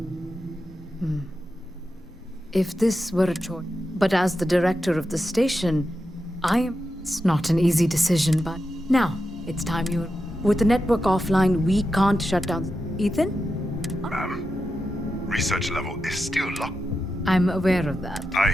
If this were a choice... But as the director of the station, It's not an easy decision, but... Now, it's time you... With the network offline, we can't shut down... Ethan? Ma'am, research level is still locked. I'm aware of that.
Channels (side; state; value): both; normal; correlation 0.89